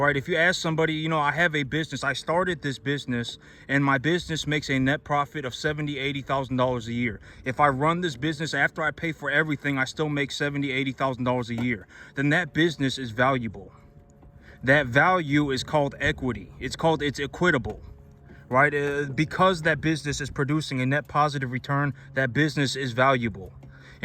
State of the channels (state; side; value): identical; both; correlation 1.00